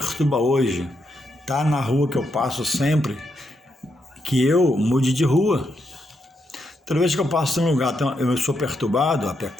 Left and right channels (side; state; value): both; normal; correlation 0.81